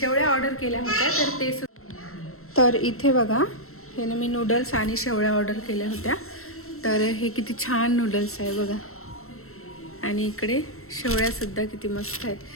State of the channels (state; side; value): late; right; 0.63 ms